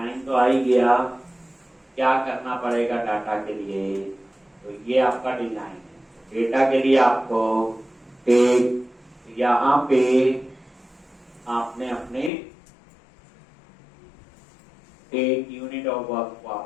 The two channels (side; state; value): right; drops out; at 12.3 s